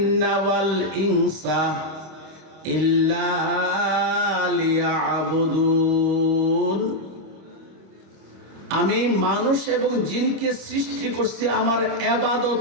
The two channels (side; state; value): left; late; 26 ms